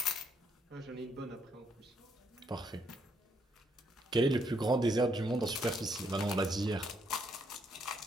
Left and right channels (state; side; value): normal; both; correlation 0.73